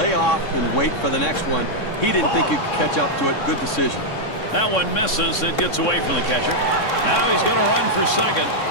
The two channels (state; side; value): late; right; 3.6 ms